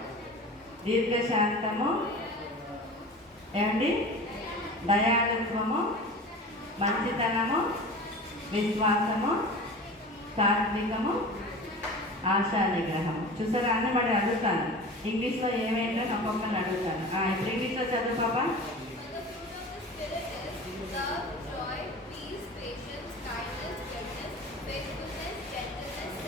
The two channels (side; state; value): both; normal; correlation 0.36